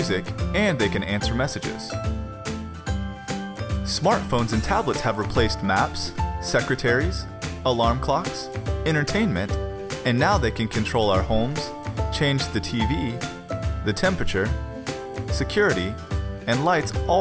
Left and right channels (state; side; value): identical; both; correlation 1.00